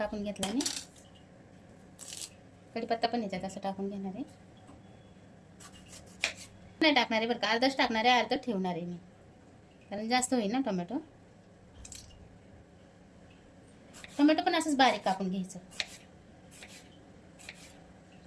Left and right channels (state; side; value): identical; both; correlation 1.00